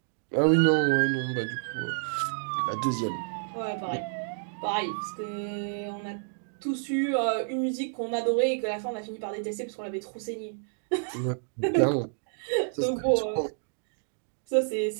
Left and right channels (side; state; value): left; silent; digital silence